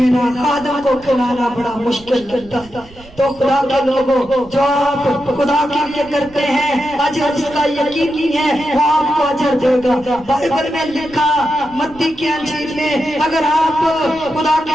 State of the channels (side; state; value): right; noise; rumble, 22 dB below the sound